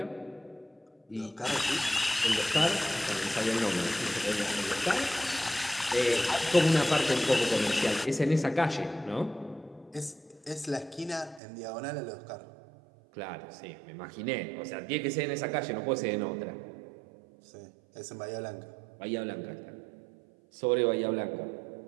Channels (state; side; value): drops out; left; at 11.4 s